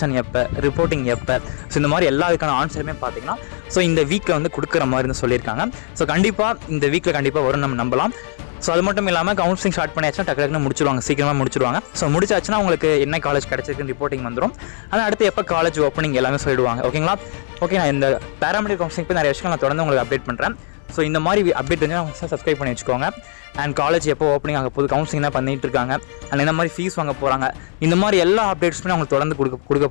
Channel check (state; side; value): silent; right; 57 dB below the other